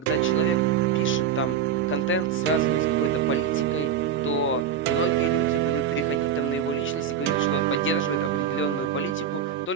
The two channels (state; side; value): quieter; left; 7.7 dB